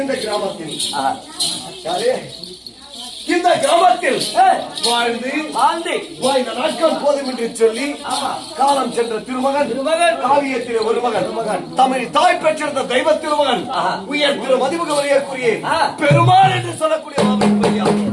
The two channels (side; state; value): both; identical; correlation 1.00